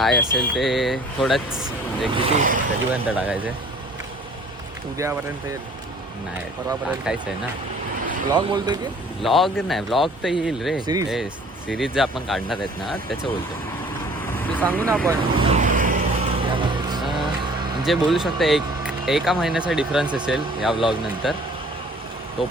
असेल ते थोडंच म्हणजे किती कधीपर्यंत टाकायचं आहे? उद्यापर्यंत येईल. नाही परवापर्यंत टाकायचं आहे ना. ब्लॉग बोलतोय की व्लॉग नाही, व्लॉग तर येईल रे. Series? सिरीज जे आपण काढणार आहेत ना त्याचं बोलतो. ते सांगू ना आपण. म्हणजे बोलू शकता एका महिन्याचा डिफरन्स असेल या व्लॉग नंतर.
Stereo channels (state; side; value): normal; both; correlation 0.52